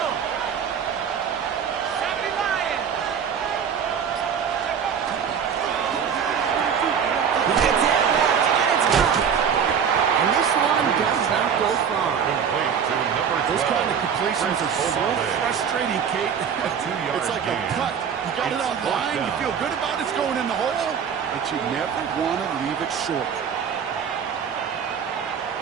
70 Lions. He gets it left, and it's gone. And this one does not go far. Those kind of completions are so frustrating, Kate. It's like a putt. You got it on line, you feel good about it's going in the hole, but you never want to leave it short.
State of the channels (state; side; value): quieter; left; 7.4 dB